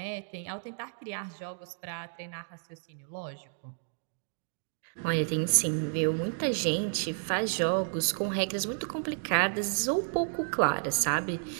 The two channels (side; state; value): left; silent; digital silence